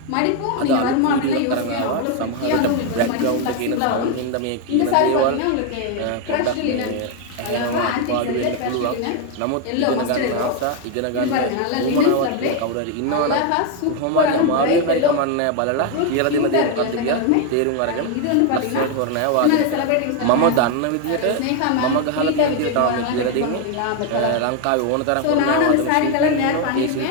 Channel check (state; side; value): different; both; correlation 0.01